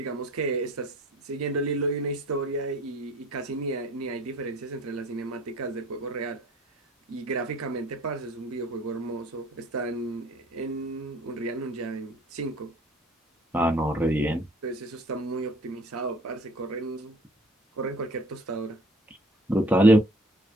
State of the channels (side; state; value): both; normal; correlation 0.51